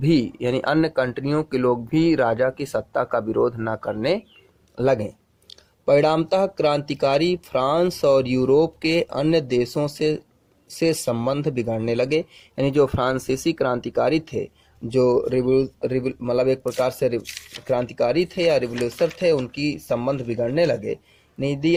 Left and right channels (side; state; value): both; identical; correlation 1.00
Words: यानी अन्य कंट्रियों के लोग भी राजा की सत्ता का विरोध ना करने लगे। परिणामतः क्रांतिकारी फ्रांस और यूरोप के अन्य देशों से संबंध बिगड़ने लगे। यानी जो फ्रांसीसी क्रांतिकारी थे, जो मतलब एक प्रकार से क्रांतिकारी थे या रिवोल्यूशनर थे, उनकी संबंध बिगड़ने लगे। नहीं